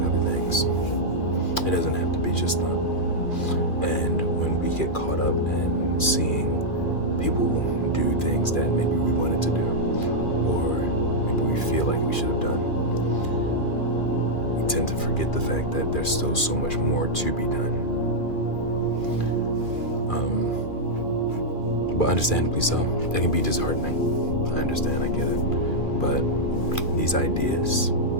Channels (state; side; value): late; right; 2.3 ms